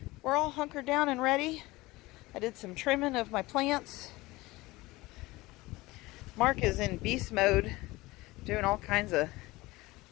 we're all hunkered down and ready. I did some trimming of my plants. Mark is in beast mode, doing all kinds of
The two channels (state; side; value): quieter; right; 20.5 dB